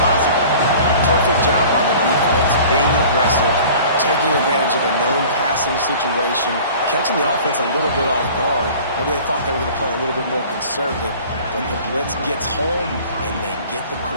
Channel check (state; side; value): inverted; both; correlation -0.45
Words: Perfect job by the defense, being aggressive, taking advantage of a known passing situation, catching the offense a little bit off guard. Maybe they thought they were going to play a little bit more conservative, but the blitz gets home, and they get the